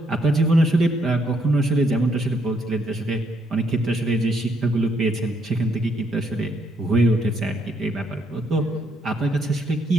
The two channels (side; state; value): both; normal; correlation 0.73